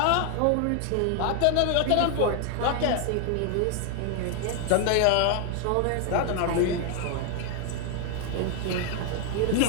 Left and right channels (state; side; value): different; both; correlation 0.01